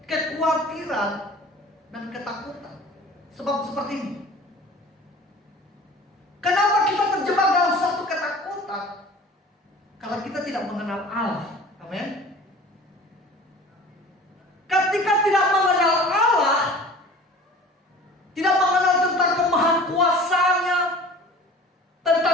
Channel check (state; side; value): normal; both; correlation 0.43